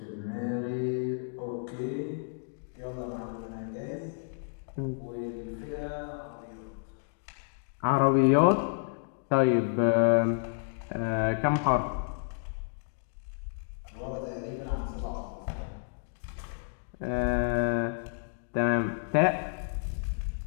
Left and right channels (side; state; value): right; silent; digital silence